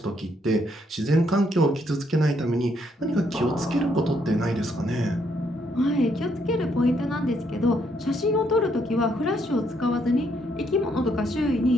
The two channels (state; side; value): normal; both; correlation 0.73